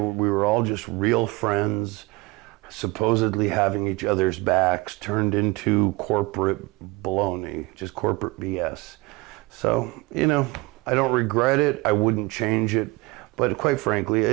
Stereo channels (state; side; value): quieter; left; 23.8 dB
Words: all just real friends, supposedly having each other's backs, turned into corporate baloney, just corporate BS. So, you know, I don't regret it. I wouldn't change it. But quite frankly,